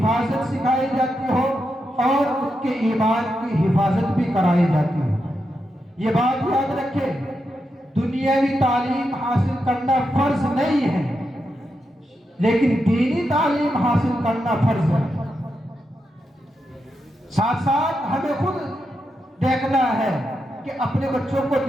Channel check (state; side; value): normal; both; correlation 0.85